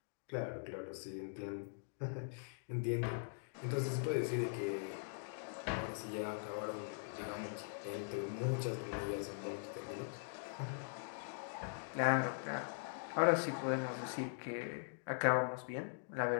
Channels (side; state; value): right; silent; digital silence